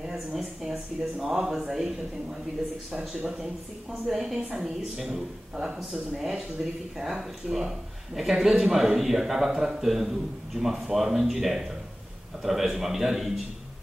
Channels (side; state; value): both; normal; correlation 0.96